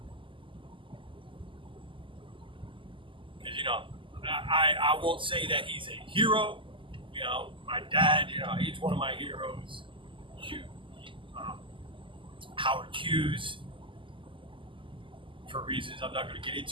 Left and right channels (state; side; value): late; left; 0.25 ms